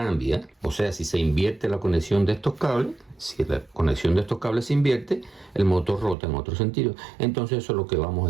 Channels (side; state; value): left; drops out; at 6.2 s